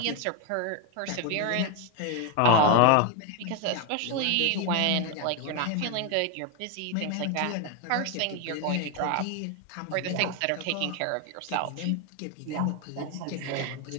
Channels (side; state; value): both; different; correlation 0.01